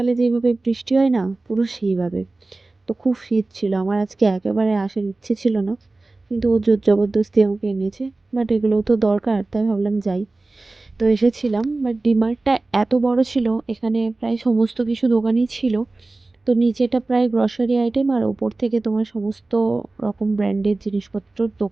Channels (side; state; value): left; quieter; 3.2 dB